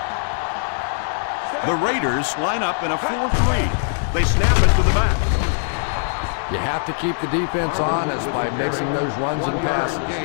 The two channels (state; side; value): silent; right; digital silence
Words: The Raiders line up in a 4-3. They snap it to the back. You have to keep the defense honest by mixing those runs and passes.